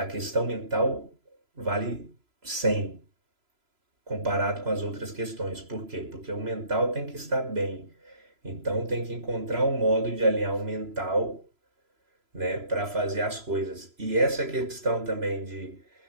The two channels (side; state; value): left; late; 3.0 ms